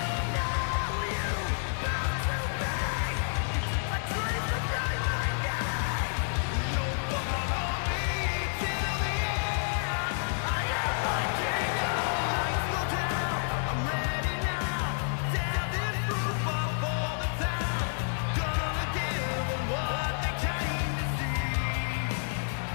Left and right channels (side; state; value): right; silent; digital silence